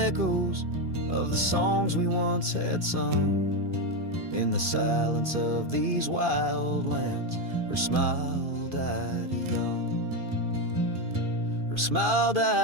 of the songs we once had sung. In the silence of these wild lands, her smile died young. Her smile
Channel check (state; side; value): late; left; 2.5 ms